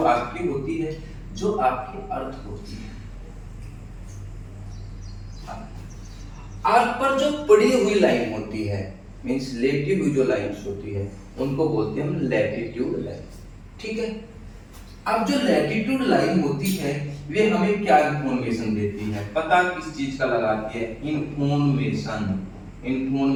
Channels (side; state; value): both; identical; correlation 1.00